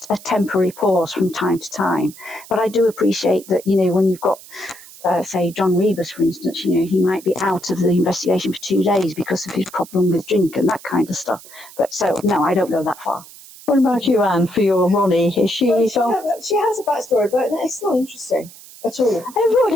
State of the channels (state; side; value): noise; right; hiss, 19 dB below the sound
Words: a temporary pause from time to time. But I do appreciate that, you know, when you've got say John Rebus, for instance, you know, he might be out of the investigation for 2 days because of his problem with drink and that kind of stuff. But so, no, I don't go that far. What about you, Anne, for your Ronnie? Is she... Well, she has a backstory, but it's not interesting at all.